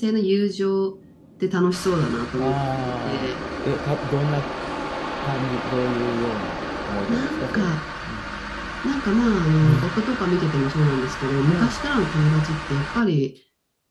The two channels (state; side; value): identical; both; correlation 1.00